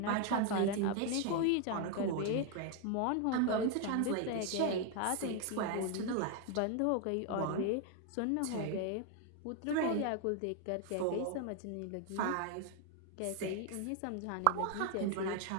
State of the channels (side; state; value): both; different; correlation 0.01